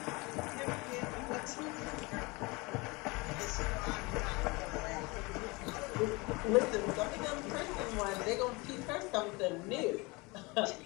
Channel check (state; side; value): quieter; right; 25.7 dB